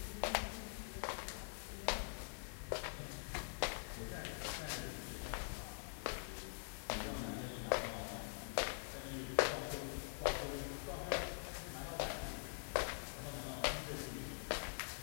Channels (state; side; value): silent; right; digital silence